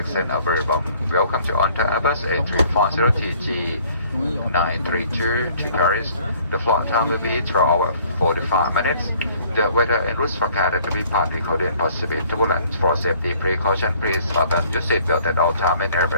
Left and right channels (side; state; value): both; inverted; correlation -0.58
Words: a very warm welcome to on to Airbus A350 932 to Paris. The flight time will be 12 hours 45 minutes. The weather and routes forecasted to be partly cloudy and possibly turbulent. For safety precaution, please button your seatbelt at all time and